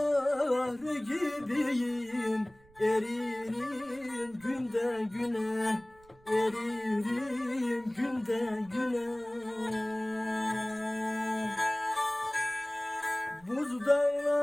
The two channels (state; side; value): noise; right; rumble, 28 dB below the sound